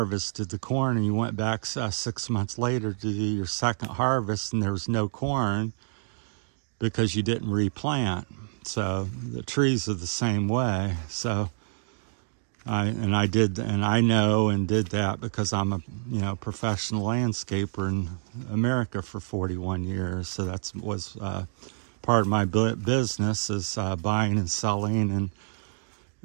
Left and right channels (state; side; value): silent; left; digital silence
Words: the corn and you went back 6 months later to do your second harvest and there was no corn because you didn't replant. So the trees are the same way. So I know and did that because I'm a, you know, professional landscaper in America for 41 years. So that was part of my business, is buying and selling